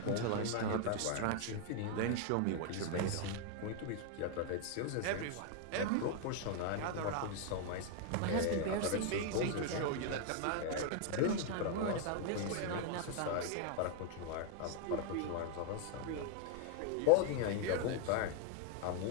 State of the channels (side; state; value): both; different; correlation 0.00